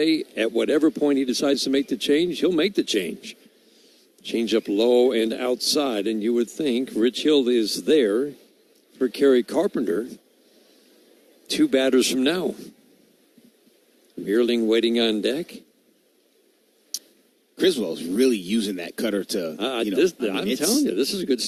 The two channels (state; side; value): identical; both; correlation 1.00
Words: at whatever point he decides to make the change, he'll make the change. Change up low and outside, and you would think Rich Hill is there for Kerry Carpenter. 2 batters from now. Meerling waiting on deck. Criswell's really using that cutter to, I'm telling you, this is good